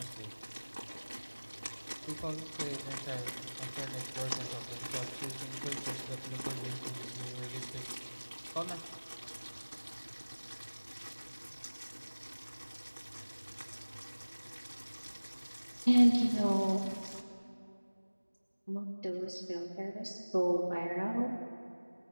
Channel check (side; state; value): both; inverted; correlation -1.00